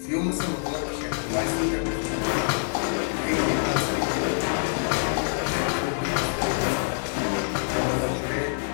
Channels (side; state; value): right; silent; digital silence